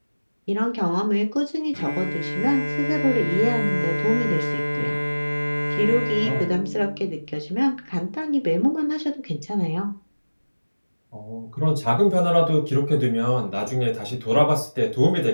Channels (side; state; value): both; inverted; correlation -1.00